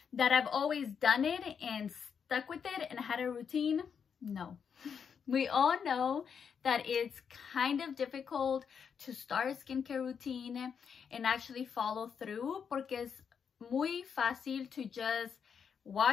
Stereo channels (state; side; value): quieter; right; 6.9 dB